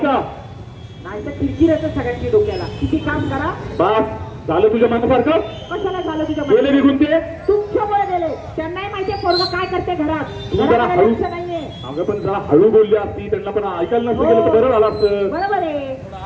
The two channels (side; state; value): both; identical; correlation 1.00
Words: नाही तर किरकिर येतं सगळ्यांची डोक्याला। किती काम करा, बस झालं तुझ्या मनासारखं? कशाला झालं तुझ्या गेले निघून ते? तुमच्यामुळे गेले, त्यांनाही माहितीये पोरगं काय करते घरात, जरा हळू नाहीये। अगं पण जरा हळू बोलली असती, त्यांना पण ऐकायला नसतं गेलं तर बरं झालं असतं। बरोबर आहे,